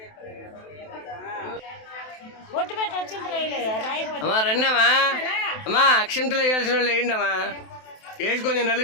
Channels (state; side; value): late; right; 27 ms